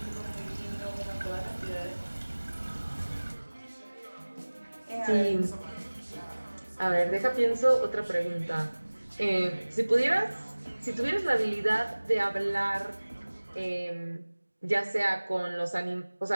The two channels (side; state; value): both; inverted; correlation -1.00